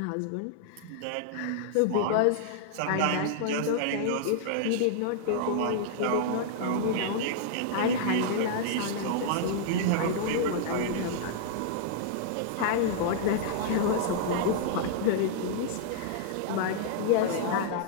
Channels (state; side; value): different; both; correlation -0.01